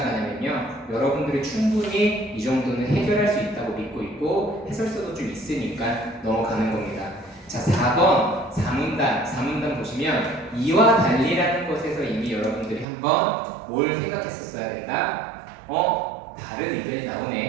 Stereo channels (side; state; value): left; drops out; at 12.9 s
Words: 여러분들이 충분히 이 정도는 해결할 수 있다고 믿고 있고 해설서도 좀 있으니까 넘어가는 겁니다. 자, 4번 사문단 보시면 이와 달리라는 것에서 이미 여러분들이 한번 뭘 생각했었어야 된다. 다른 의견이